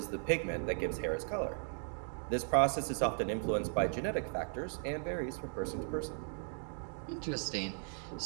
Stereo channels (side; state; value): left; silent; 53 dB below the other